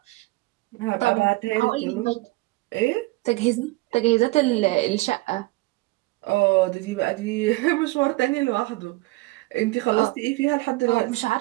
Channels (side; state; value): left; quieter; 21.9 dB